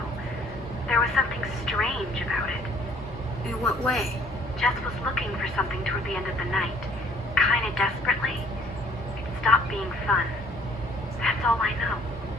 There was something strange about it. In what way? Jess was looking for something toward the end of the night, kind of desperately. It stopped being fun. That's all I know.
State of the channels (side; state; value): both; normal; correlation 0.58